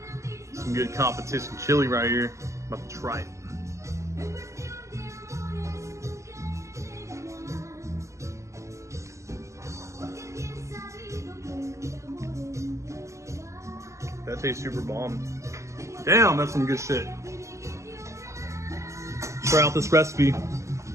Some good competition chili right here. About to try it. That tastes super bomb. Damn, that's some good shit. Try out this recipe.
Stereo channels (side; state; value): left; late; 0.14 ms